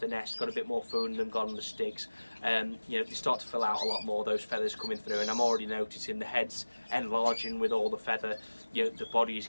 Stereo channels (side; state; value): both; inverted; correlation -1.00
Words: the nest, got a bit more food in them, got on the sticks, you know, they start to fill out a lot more, those feathers coming through, and I'm already noticing the heads enlarging with all the feather, you know, the body is